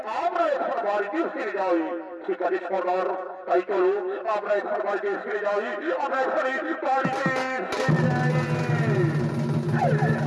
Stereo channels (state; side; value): identical; both; correlation 1.00